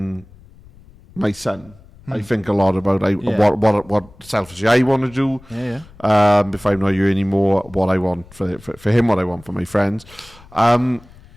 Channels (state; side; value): noise; left; rumble, 24 dB below the sound